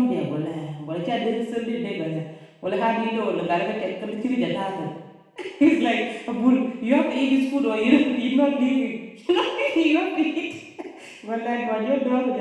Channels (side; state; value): both; identical; correlation 1.00